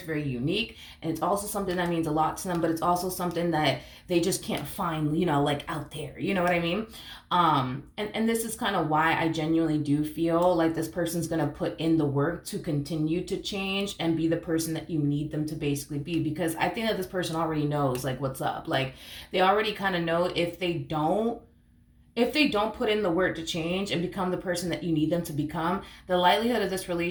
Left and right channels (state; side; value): identical; both; correlation 1.00